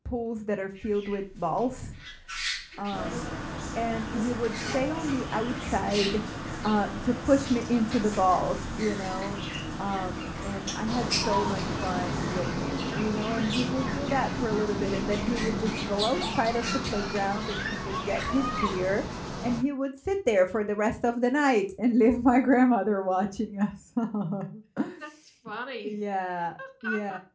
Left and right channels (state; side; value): identical; both; correlation 1.00